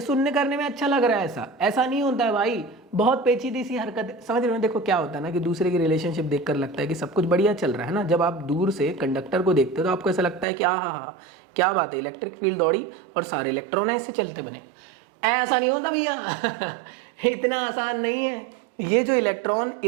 सुनने करने में अच्छा लग रहा है, ऐसा नहीं होता है भाई, बहुत पेचीदी सी हरकत, समझ रहे हो? देखो क्या होता है ना कि दूसरे की रिलेशनशिप देखकर लगता है कि सब कुछ बढ़िया चल रहा है ना। जब आप दूर से कंडक्टर को देखते हो तो आपको ऐसा लगता है कि हाँ क्या बात है, इलेक्ट्रिक फील्ड दौड़ी और सारे इलेक्ट्रॉन ऐसे चलते बने। ऐसा नहीं होता भैया इतना आसान नहीं है। ये जो इलेक्ट्रॉन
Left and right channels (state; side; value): drops out; left; at 10.5 s